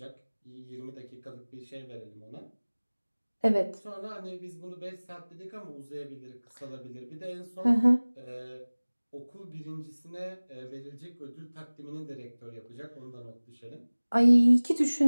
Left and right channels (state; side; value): inverted; both; correlation -1.00